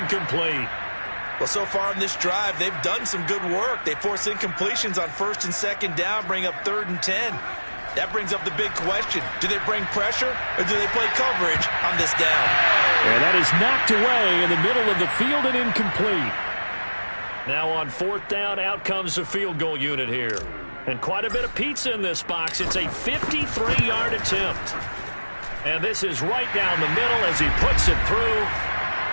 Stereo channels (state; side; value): inverted; both; correlation -1.00